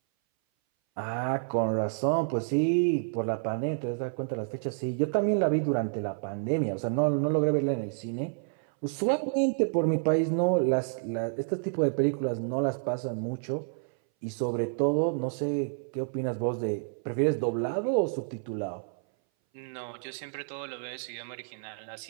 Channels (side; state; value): left; silent; 58 dB below the other